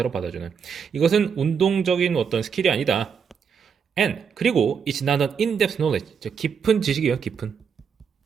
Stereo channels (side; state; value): left; quieter; 6.7 dB